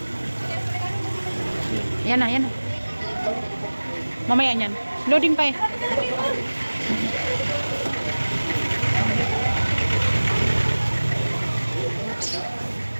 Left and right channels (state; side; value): inverted; both; correlation -1.00